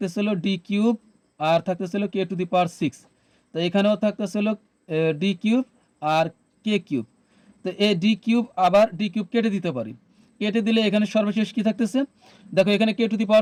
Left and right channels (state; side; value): identical; both; correlation 1.00